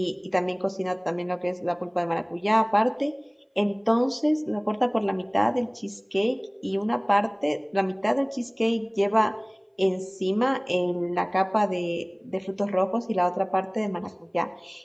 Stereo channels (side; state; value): both; identical; correlation 1.00